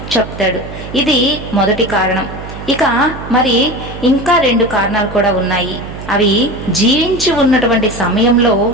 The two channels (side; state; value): right; noise; hum, 11 dB below the sound